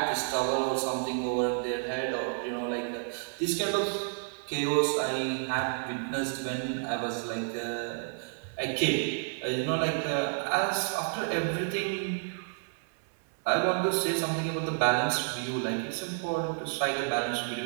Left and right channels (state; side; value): silent; left; 58 dB below the other